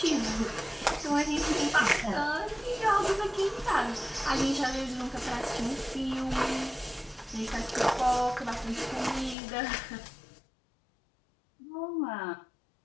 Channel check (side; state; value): right; drops out; at 9.3 s